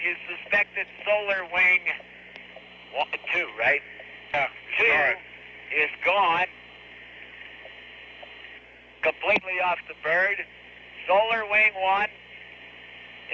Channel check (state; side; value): identical; both; correlation 1.00